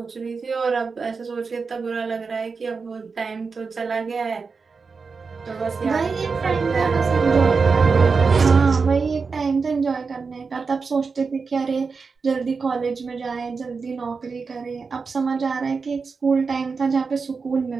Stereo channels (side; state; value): left; quieter; 4.9 dB